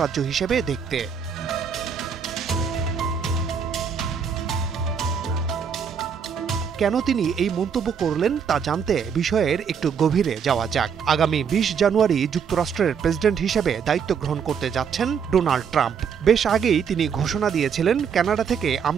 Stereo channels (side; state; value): left; quieter; 6.9 dB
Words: হিসেবে দেখতে। কেন তিনি এই মন্তব্য করলেন তা জানতে বিষয়ের একটু গভীরে যাওয়া যাক। আগামী ২০ জানুয়ারি যুক্তরাষ্ট্রের প্রেসিডেন্ট হিসেবে দায়িত্ব গ্রহণ করতে যাচ্ছেন ডোনাল্ড ট্রাম্প। বেশ আগেই তিনি ঘোষণা দিয়েছিলেন কানাডা থেকে